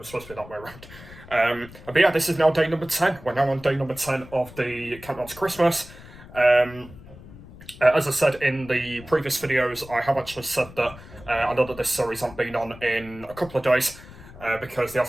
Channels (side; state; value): left; noise; rumble, 18 dB below the sound